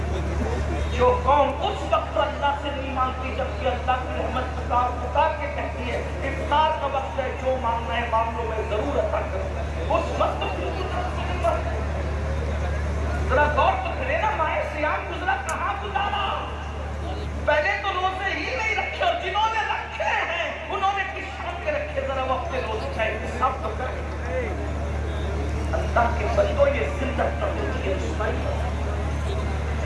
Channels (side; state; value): both; identical; correlation 1.00